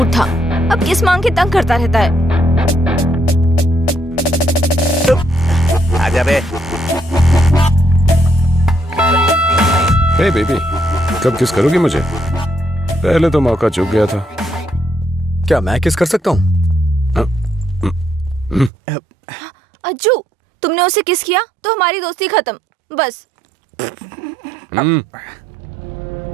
था। अब किस मांग के तंग करता रहता है। आजा बे। हे बेबी, कब किस करोगी मुझे? पहले तो मौका चूक गया था। क्या मैं किस कर सकता हूँ? अज्जू, तुमने उसे किस किया तो हमारी दोस्ती खत्म। बस।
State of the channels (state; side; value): drops out; left; at 18.7 s